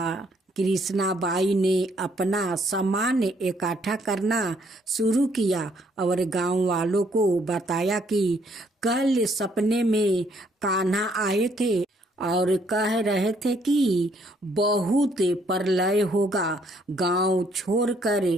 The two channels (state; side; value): normal; both; correlation 0.68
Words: कृष्णा बाई ने अपना सामान इकट्ठा करना शुरू किया और गांव वालों को बताया कि कल सपने में कान्हा आए थे और कह रहे थे कि बहुत प्रलय होगा। गांव छोड़कर